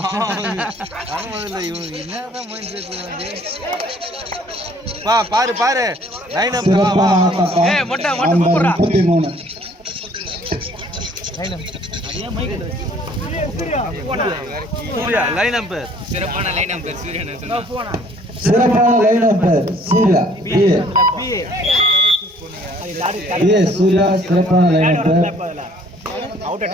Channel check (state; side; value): normal; both; correlation 0.58